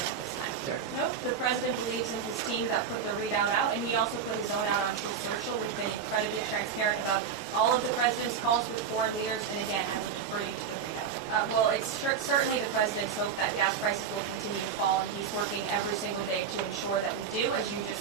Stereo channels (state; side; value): quieter; left; 6.9 dB